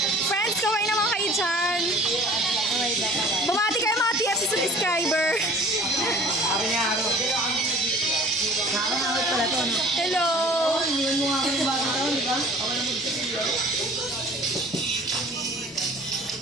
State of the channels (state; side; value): normal; both; correlation 0.47